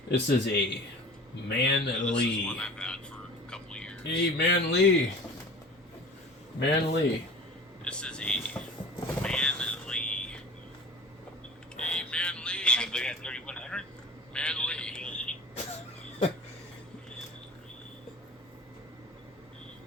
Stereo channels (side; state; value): both; normal; correlation 0.39